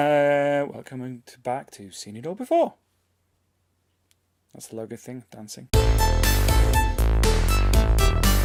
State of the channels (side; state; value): both; identical; correlation 1.00